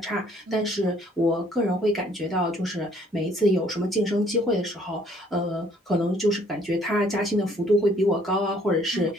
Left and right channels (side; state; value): both; normal; correlation 0.61